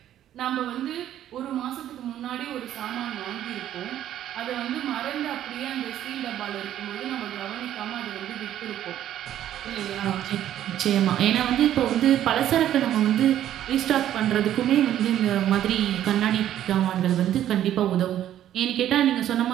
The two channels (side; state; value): left; quieter; 11.6 dB